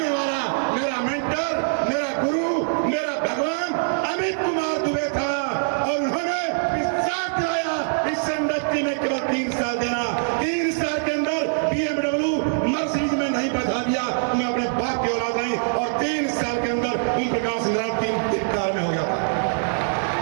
वाला मेरा मेंटर, मेरा गुरु, मेरा भगवान अमित कुमार दुबे था। और उन्होंने इस साथ लाया इस इंडस्ट्री में केवल 3 साल देना। 3 साल के अंदर BMW मर्सिडीज में नहीं बैठा दिया, मैं अपने बाप की औलाद नहीं। और 3 साल के अंदर ओम प्रकाश नारायण 3 कार में हो गया था।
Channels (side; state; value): left; silent; digital silence